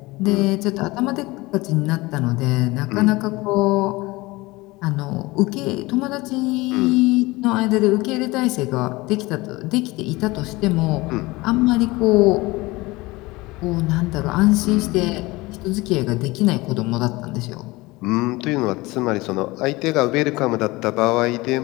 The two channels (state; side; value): quieter; right; 21.7 dB